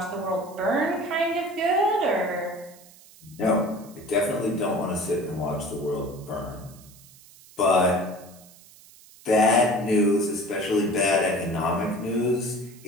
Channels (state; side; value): noise; right; hiss, 23 dB below the sound